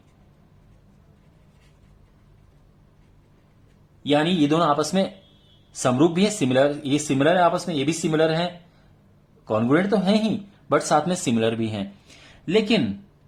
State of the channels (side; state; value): both; identical; correlation 1.00